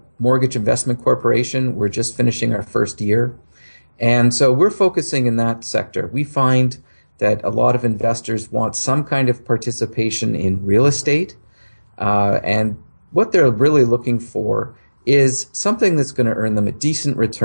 mortgage investment corporation. We're just finishing our first year. And so we're focusing in that sector. We find that a lot of investors want some kind of participation in real estate. And what they're really looking for is something that's going to earn them a decent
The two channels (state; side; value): inverted; both; correlation -1.00